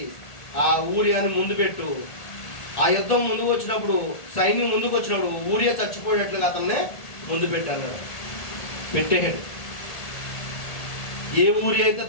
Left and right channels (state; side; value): late; right; 1.7 ms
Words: ఆ ఊరియాని ముందు పెట్టు. ఆ యుద్ధం ముందుకు వచ్చినప్పుడు, సైన్యం ముందుకు వచ్చినప్పుడు ఊరియా చచ్చిపోయేట్లుగా అతన్నే ముందు పెట్టాడు. పెట్టేశాడు. ఏ ఊరి అయితే